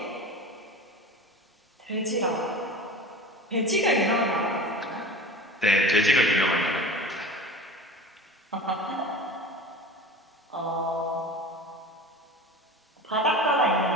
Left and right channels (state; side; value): normal; both; correlation 0.35